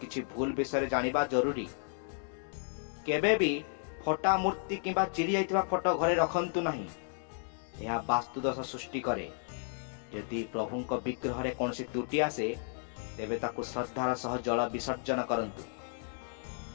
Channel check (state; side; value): silent; right; 56 dB below the other